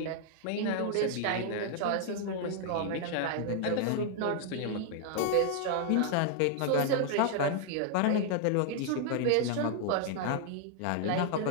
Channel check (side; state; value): both; different; correlation 0.00